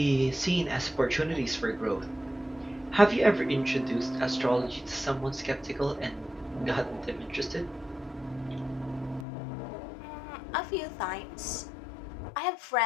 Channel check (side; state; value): right; drops out; at 9.2 s